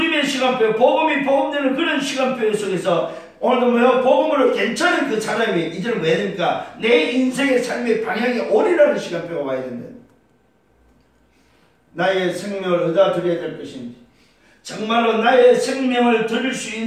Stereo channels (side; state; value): both; identical; correlation 1.00